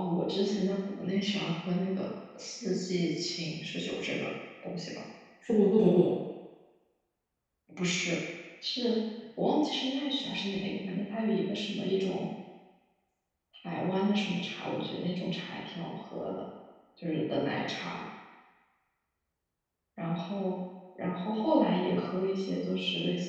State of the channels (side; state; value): both; identical; correlation 1.00